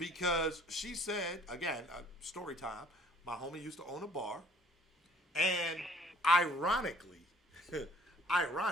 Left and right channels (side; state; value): both; normal; correlation 0.57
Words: she said, again, story time, my homie used to own a bar. And ironically,